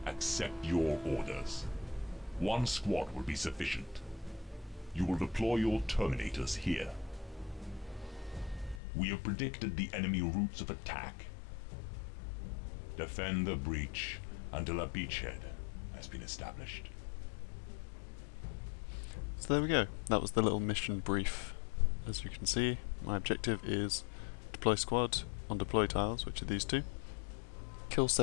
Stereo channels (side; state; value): right; drops out; at 8.8 s